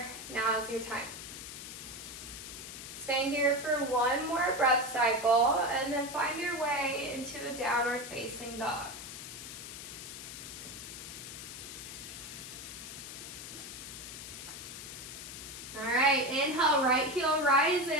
Now is your time. Staying here for one more breath cycle and then find your way into a downward facing dog. All right, inhale, right heel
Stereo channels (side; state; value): left; noise; hiss, 10 dB below the sound